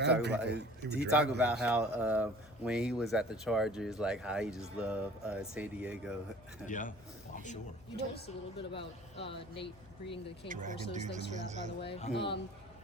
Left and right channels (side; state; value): left; noise; hum, 24 dB below the sound